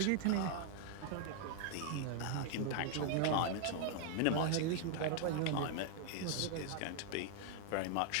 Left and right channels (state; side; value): different; both; correlation 0.00